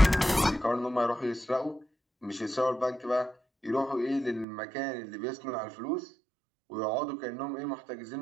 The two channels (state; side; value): drops out; left; at 4.5 s